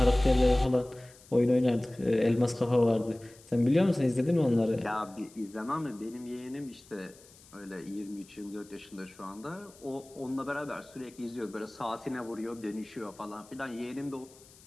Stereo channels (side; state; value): left; noise; hiss, 24 dB below the sound